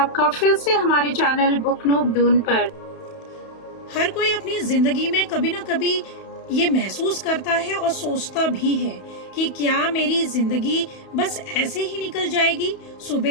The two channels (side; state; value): right; late; 31 ms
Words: फिर से हमारे चैनल बुक नूब दून पर। हर कोई अपनी जिंदगी में कभी ना कभी ये महसूस करता है और सोचता भी है कि क्या मेरी जिंदगी बस ऐसे ही निकल जाएगी।